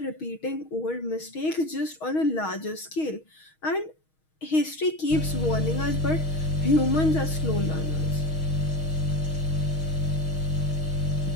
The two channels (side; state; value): right; late; 6.3 ms